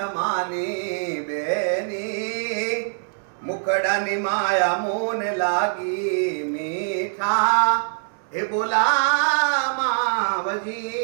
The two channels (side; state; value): left; silent; digital silence